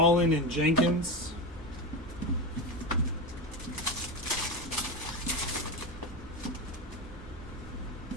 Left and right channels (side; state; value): both; normal; correlation 0.19